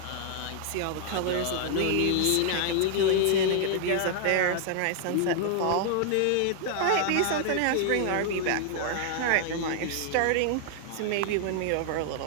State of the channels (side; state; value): both; different; correlation -0.01